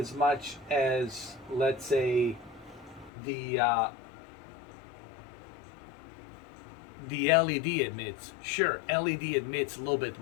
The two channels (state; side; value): drops out; right; at 3.1 s